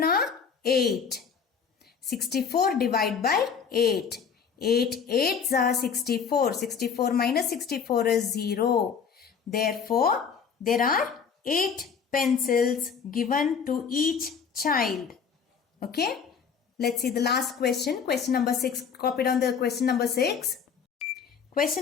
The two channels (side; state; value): right; quieter; 6.5 dB